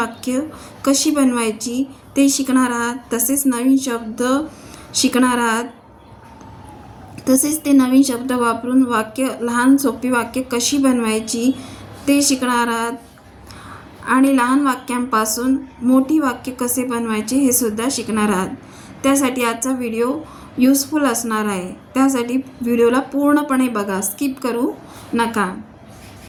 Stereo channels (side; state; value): both; identical; correlation 1.00